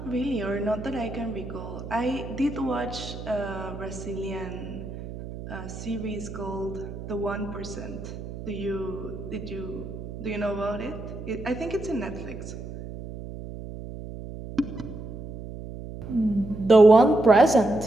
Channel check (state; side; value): noise; right; hum, 10 dB below the sound